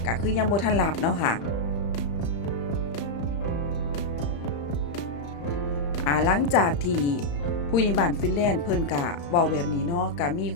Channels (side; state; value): right; late; 35 ms